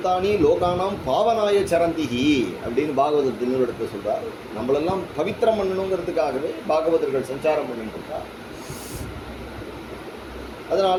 லோகானாம் பாவனாய சரந்திகி அப்படின்னு பாகவதத்தில் எடுத்து சொல்றார். நம்மளெல்லாம் பவித்திரம் பண்ணணுங்கிறதுக்காகவே பாகவதர்கள் சஞ்சாரம் பண்ணிட்டு இருக்கார். அதனால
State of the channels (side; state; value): both; identical; correlation 1.00